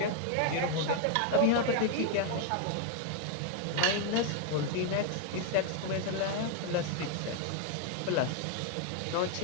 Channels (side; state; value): both; different; correlation 0.00